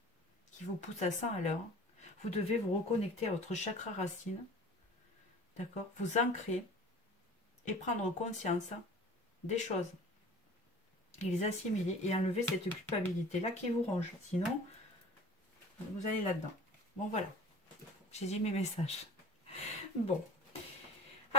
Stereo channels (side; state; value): both; normal; correlation 0.43